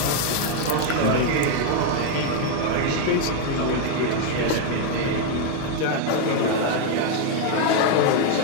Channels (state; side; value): different; both; correlation 0.00